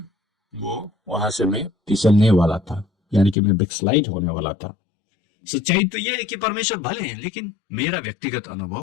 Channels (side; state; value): right; drops out; at 3.4 s